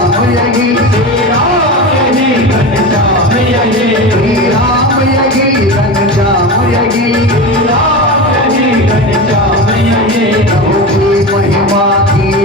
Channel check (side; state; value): both; normal; correlation 0.25